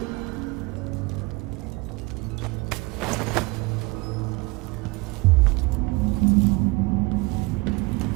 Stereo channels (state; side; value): quieter; left; 25.1 dB